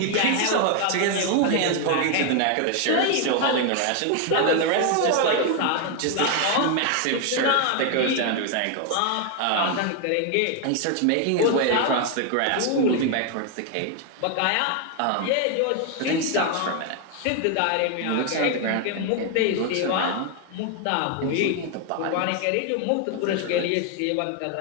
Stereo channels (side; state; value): both; different; correlation 0.01